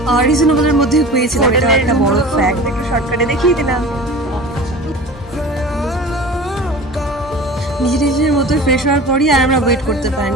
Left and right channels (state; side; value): normal; both; correlation 0.38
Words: রিজনেবলের মধ্যেই পেয়েছিলাম। এটা একটা বড় ফ্যাক্ট, একটু শর্টকাটে দেখিয়ে দিলাম। নিজের মতো ফ্রেশ হওয়ার পরই আর আমরা ওয়েট করতে